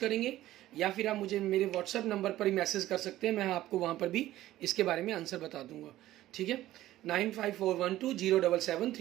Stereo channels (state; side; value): quieter; left; 14.8 dB